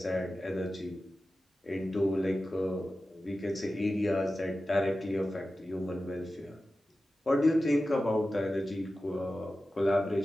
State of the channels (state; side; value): normal; both; correlation 0.94